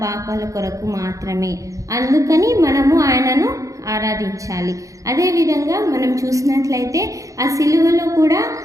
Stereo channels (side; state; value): left; late; 0.16 ms